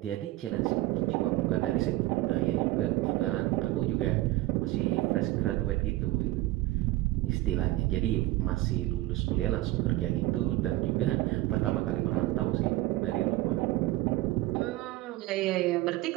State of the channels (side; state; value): left; quieter; 17.8 dB